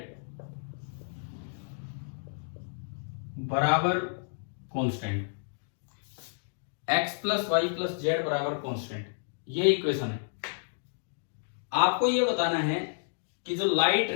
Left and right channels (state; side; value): silent; right; digital silence